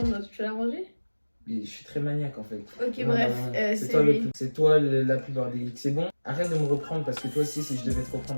tu vas la ranger? Mais je suis très maniaque en fait. Ok, Non, bref, non, non. c'est toi lui. c'est toi la plus bordélique. C'est bon? Arrête de me reprendre parce que toi aussi, si je devais te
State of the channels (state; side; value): inverted; both; correlation -1.00